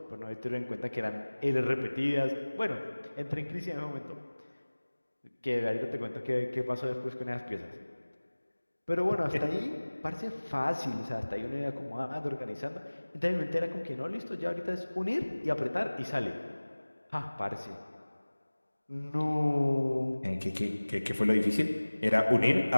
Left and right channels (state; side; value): inverted; both; correlation -1.00